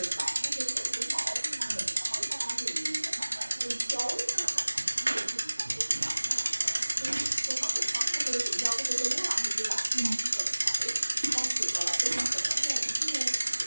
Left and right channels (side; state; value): both; inverted; correlation -1.00